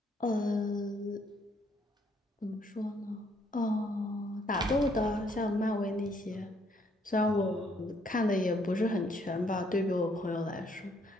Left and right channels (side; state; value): both; normal; correlation 0.68